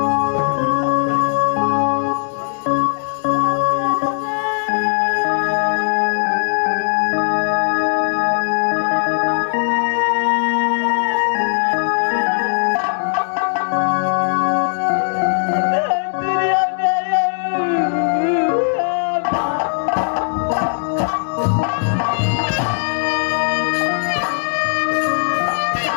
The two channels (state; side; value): silent; right; digital silence